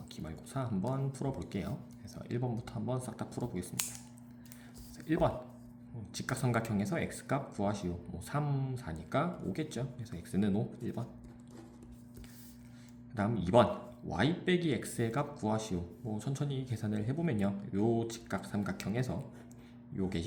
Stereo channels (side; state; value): both; identical; correlation 1.00